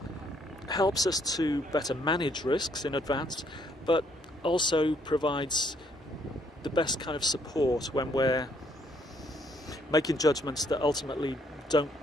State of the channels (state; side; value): normal; both; correlation 0.69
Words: helps us to better manage risks in advance, but also provides the best kind of support when we're making judgments that ultimately don't